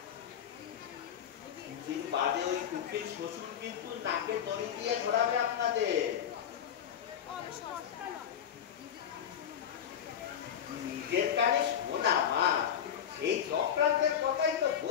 কিছুদিন বাদে ওই কুকির শ্বশুর কিন্তু নাকে দড়ি দিয়ে ধরাবে আপনাদের। নিজের কানে শোনা মা, সেই চক্রান্তের কথাই তো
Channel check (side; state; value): right; quieter; 9.0 dB